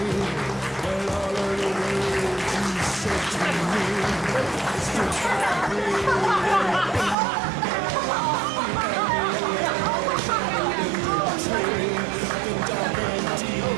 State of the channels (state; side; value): drops out; left; at 7.2 s